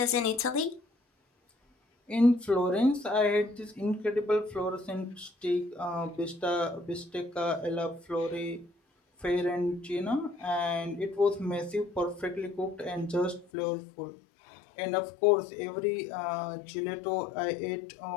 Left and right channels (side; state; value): right; drops out; at 13.5 s